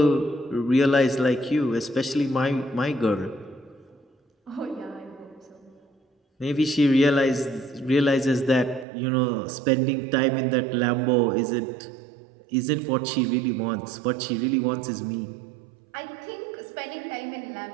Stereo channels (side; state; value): left; drops out; at 8.8 s